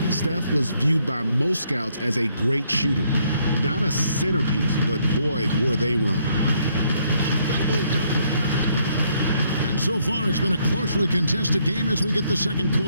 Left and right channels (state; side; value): inverted; both; correlation -0.70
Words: Steph was viewed by most scouts as a great shooter. Not a centerpiece, but boy, were they wrong. And so far, it's been a closely contested game as we get the second